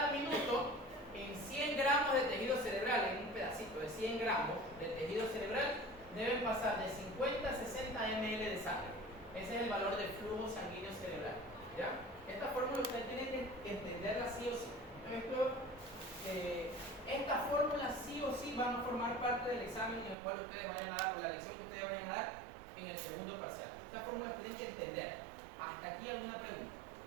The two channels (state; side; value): drops out; left; at 20.2 s